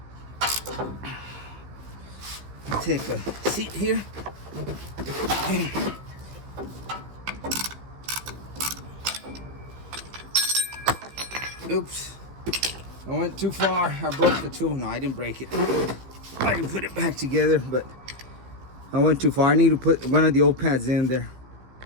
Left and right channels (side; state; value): left; late; 15 ms